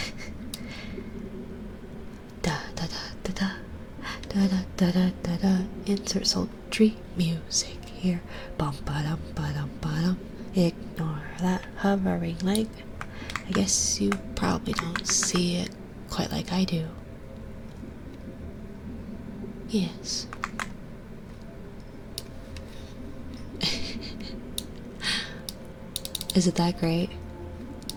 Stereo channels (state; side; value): identical; both; correlation 1.00